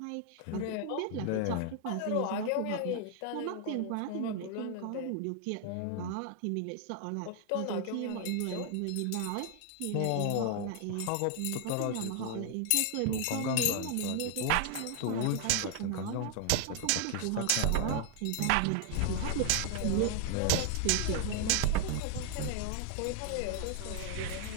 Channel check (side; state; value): both; different; correlation 0.00